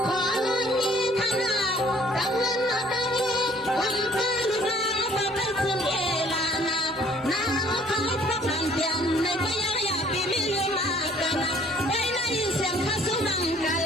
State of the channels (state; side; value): normal; both; correlation 0.58